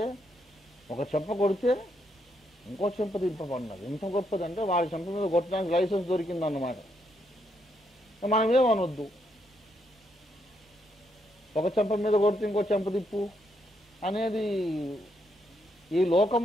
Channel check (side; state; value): both; normal; correlation 0.77